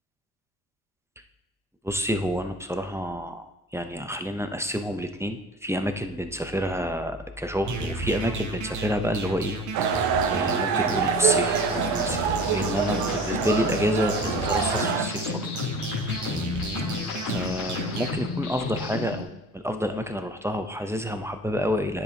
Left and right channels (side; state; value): both; normal; correlation 0.42